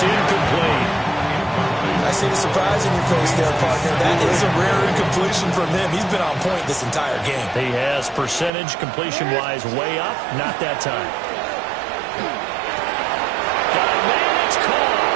incomplete. I see the surprise in your face there, partner. That is a rare incompletion from him. He's been on point this entire game. He has percentage completion-wise way up. Not that time. Got a man, it's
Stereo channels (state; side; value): drops out; left; at 8.5 s